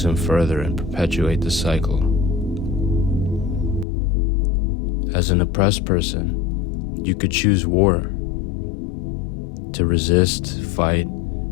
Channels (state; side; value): drops out; right; at 3.9 s